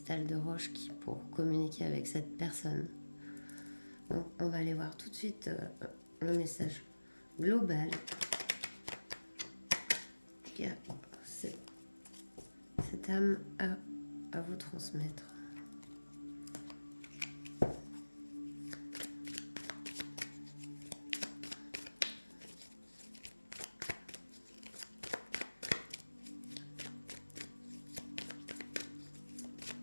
de roche pour communiquer avec cette personne. Donc, on va aller voir tout de suite le message global que cette âme a à vous transmettre.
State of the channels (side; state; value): both; inverted; correlation -1.00